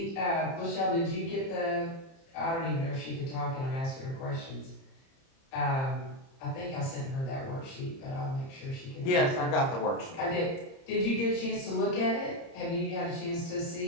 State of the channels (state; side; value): late; right; 30 ms